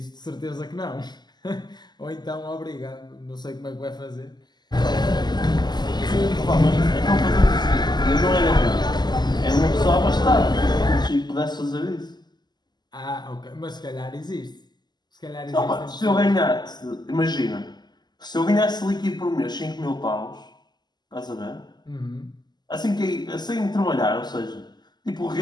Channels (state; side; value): late; right; 0.21 ms